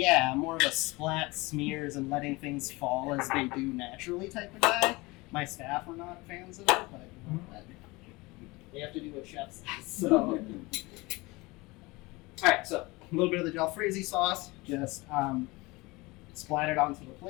I'm more of a splat smears and letting things fall as they do naturally type of guy. My staff are not fans of it, but you know, they have to do what chefs do. So, all right, so a little bit of the jalfrezi sauce, just splat it onto the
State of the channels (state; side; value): quieter; right; 23.2 dB